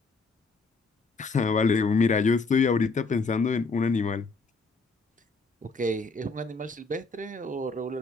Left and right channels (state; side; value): quieter; right; 3.9 dB